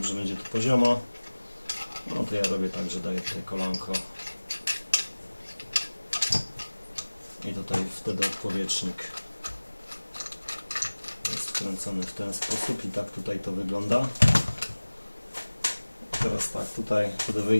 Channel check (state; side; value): inverted; both; correlation -1.00